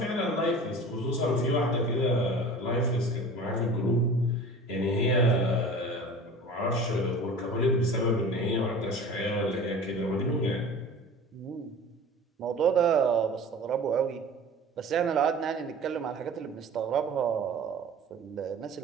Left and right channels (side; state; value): both; normal; correlation 0.40